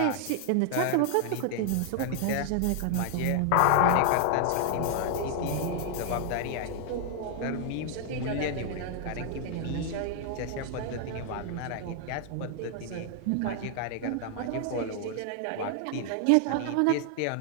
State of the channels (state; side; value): different; both; correlation 0.00